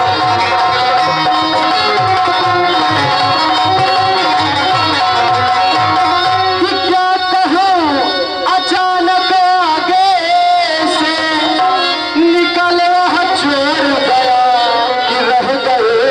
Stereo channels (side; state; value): both; identical; correlation 1.00